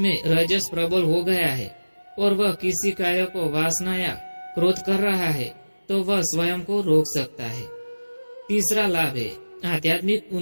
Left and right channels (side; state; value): both; inverted; correlation -1.00